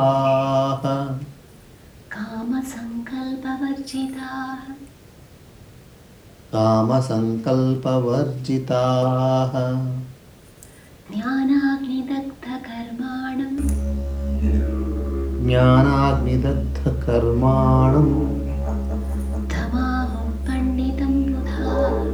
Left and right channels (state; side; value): identical; both; correlation 1.00